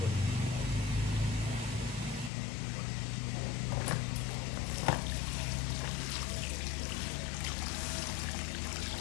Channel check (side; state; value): right; drops out; at 2.3 s